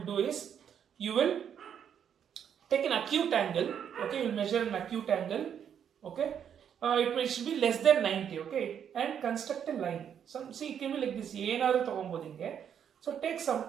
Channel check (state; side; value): quieter; left; 8.5 dB